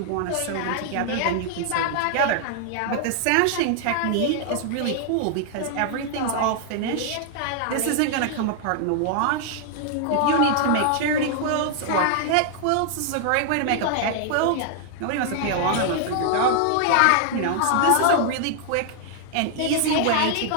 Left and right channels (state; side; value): different; both; correlation 0.00